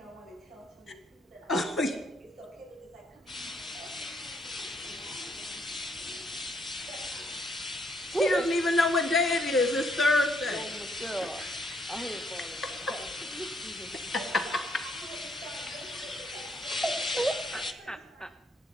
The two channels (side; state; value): both; normal; correlation 0.71